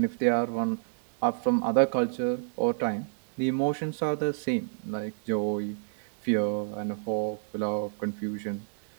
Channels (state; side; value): silent; left; 58 dB below the other